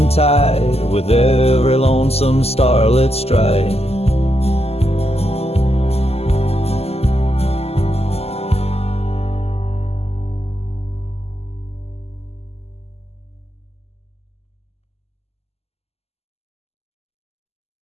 with every lonesome starlit stride.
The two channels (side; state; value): right; late; 0.29 ms